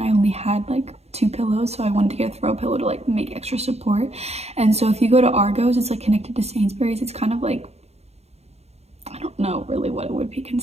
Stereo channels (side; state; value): left; late; 0.31 ms